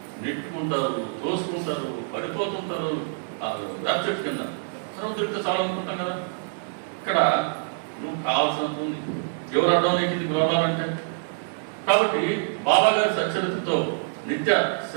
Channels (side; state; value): left; silent; digital silence